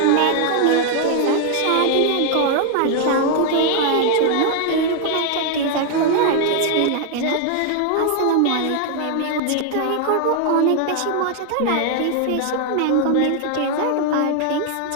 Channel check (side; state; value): both; different; correlation 0.00